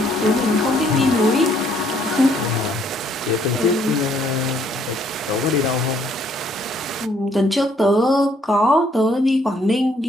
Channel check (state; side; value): normal; both; correlation 0.66